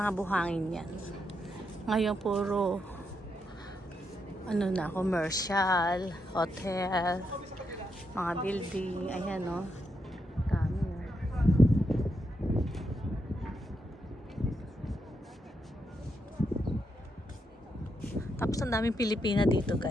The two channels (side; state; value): both; normal; correlation 0.82